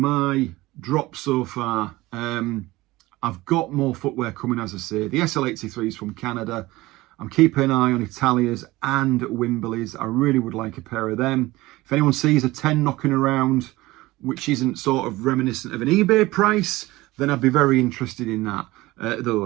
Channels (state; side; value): quieter; left; 19.2 dB